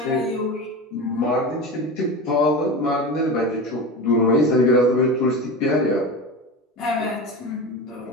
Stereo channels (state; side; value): normal; both; correlation 0.26